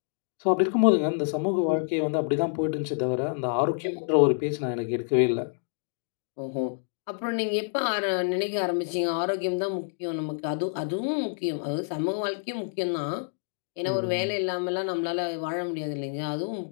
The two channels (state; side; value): silent; right; digital silence